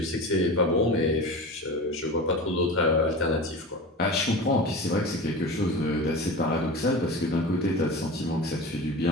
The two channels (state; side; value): normal; both; correlation 0.30